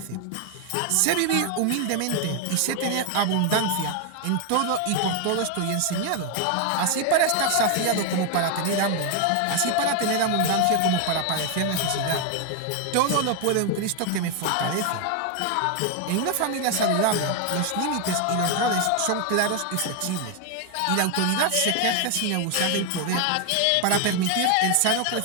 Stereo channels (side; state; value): both; different; correlation 0.01